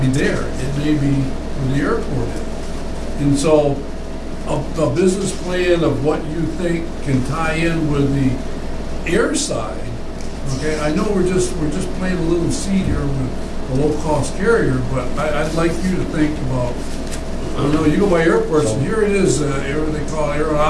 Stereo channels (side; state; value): both; identical; correlation 1.00